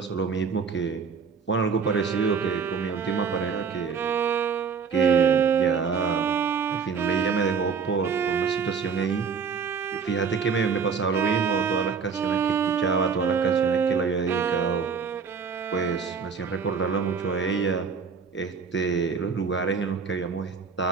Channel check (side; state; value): left; quieter; 5.8 dB